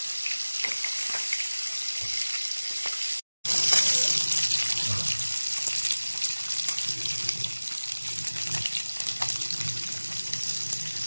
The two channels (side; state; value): both; inverted; correlation -1.00